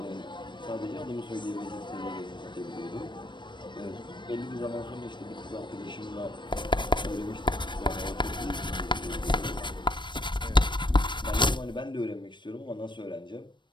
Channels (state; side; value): late; right; 0.22 ms